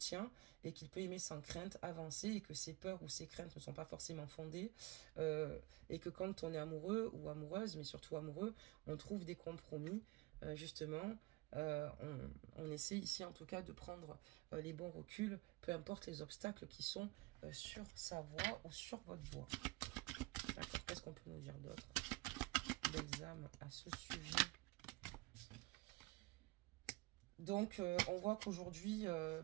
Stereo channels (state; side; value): quieter; left; 21.7 dB